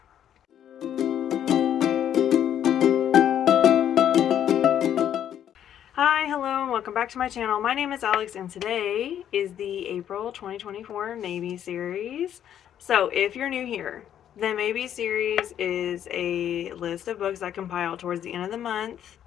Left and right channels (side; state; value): right; quieter; 10.1 dB